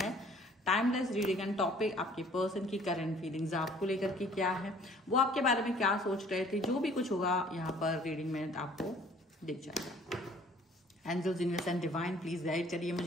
है, टाइमलेस रीडिंग एंड टॉपिक आपके पर्सन की करंट फीलिंग्स आपको लेकर के क्या है, वो आपके बारे में क्या सोच रहे थे, जो भी कुछ होगा यहाँ पर रीडिंग में आपको दिख जाएगा। Angels, universe and divine please guide करिए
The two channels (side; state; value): both; normal; correlation 0.55